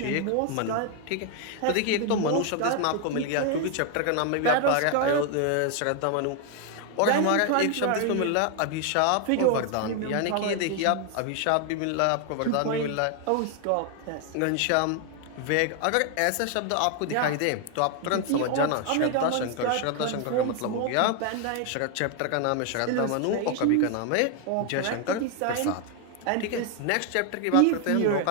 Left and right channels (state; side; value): different; both; correlation 0.01